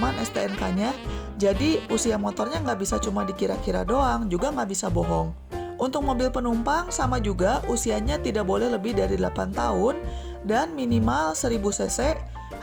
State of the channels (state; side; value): identical; both; correlation 1.00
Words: STNK-nya, jadi usia motornya nggak bisa cuma dikira-kira doang, juga nggak bisa bohong. Untuk mobil penumpang sama juga, usianya tidak boleh lebih dari 8 tahun dan minimal 1000 cc,